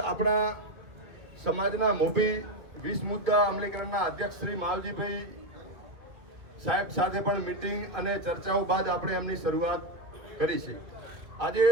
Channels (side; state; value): left; late; 1.9 ms